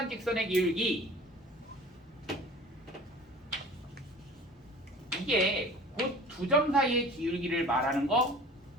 직선의 기울기. 이게 곧 두 점 사이의 기울기를 말하는 거,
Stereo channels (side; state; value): both; normal; correlation 0.43